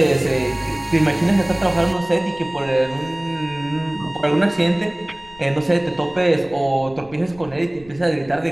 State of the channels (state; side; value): noise; left; rumble, 23 dB below the sound